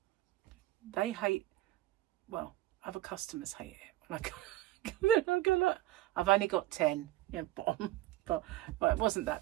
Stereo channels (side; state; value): left; quieter; 15.4 dB